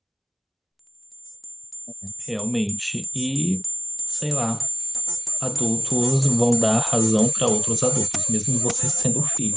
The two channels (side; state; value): both; identical; correlation 1.00